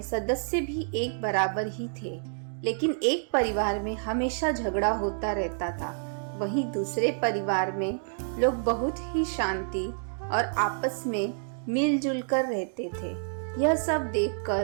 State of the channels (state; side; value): silent; left; digital silence